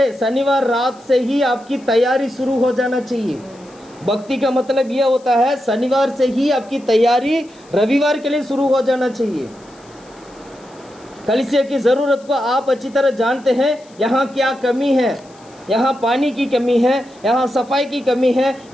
शनिवार रात से ही आपकी तैयारी शुरू हो जाना चाहिए। भक्ति का मतलब यह होता है शनिवार से ही आपकी तैयारी रविवार के लिए शुरू हो जाना चाहिए। कलीसिया की ज़रूरत को आप अच्छी तरह जानते हैं। यहाँ क्या कमी है, यहाँ पानी की कमी है, यहाँ सफाई की कमी है,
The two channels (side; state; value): left; noise; hiss, 28 dB below the sound